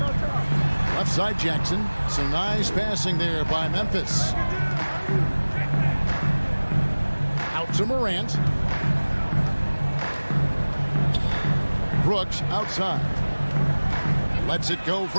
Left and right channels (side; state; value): both; inverted; correlation -1.00